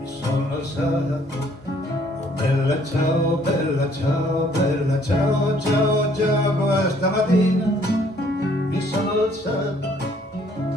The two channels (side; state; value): both; normal; correlation 0.62